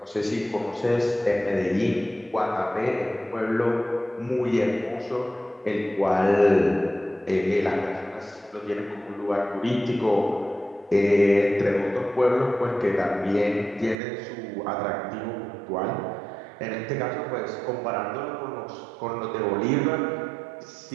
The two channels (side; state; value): left; drops out; at 14.0 s